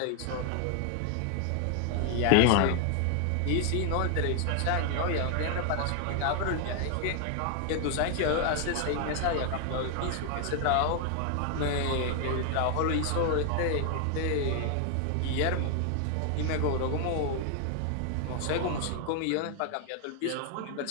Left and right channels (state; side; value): different; both; correlation 0.00